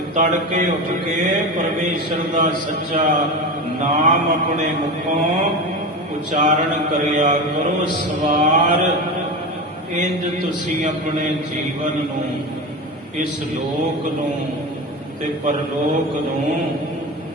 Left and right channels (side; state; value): both; normal; correlation 0.24